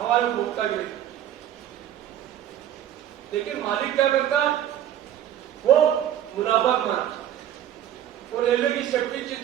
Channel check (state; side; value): quieter; left; 11.1 dB